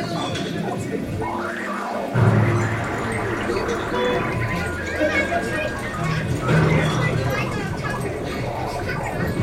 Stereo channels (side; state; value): both; identical; correlation 1.00